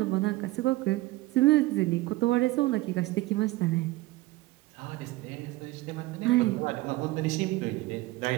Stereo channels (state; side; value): quieter; left; 18.8 dB